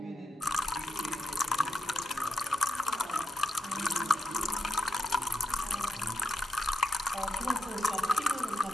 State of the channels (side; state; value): both; normal; correlation 0.85